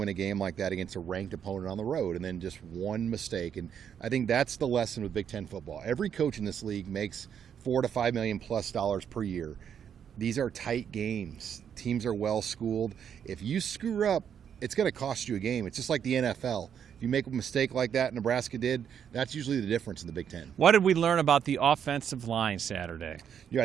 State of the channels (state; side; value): quieter; left; 8.3 dB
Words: a game like that against a ranked opponent on the road, and then just one mistake. And I think that's the lesson with Big Ten football. Every coach in this league makes $4 to $5 million plus per year. These are tight games. Teams are well schooled. If you screw up, it's going to cost you a game. It's just like the NFL. If you make a mistake like that Nebraska did, that's usually the difference in the Big Ten. What did we learn about the offensive line Saturday? Yeah,